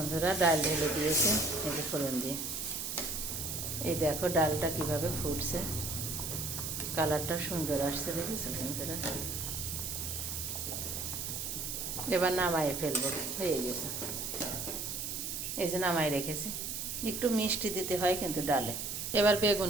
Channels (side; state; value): right; noise; hiss, 4 dB below the sound